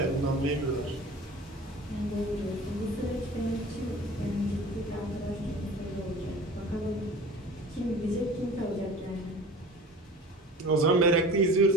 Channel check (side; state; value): both; normal; correlation 0.40